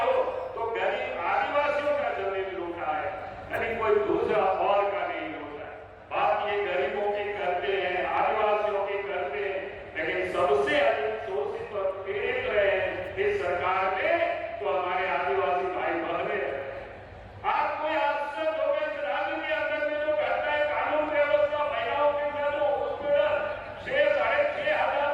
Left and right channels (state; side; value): identical; both; correlation 1.00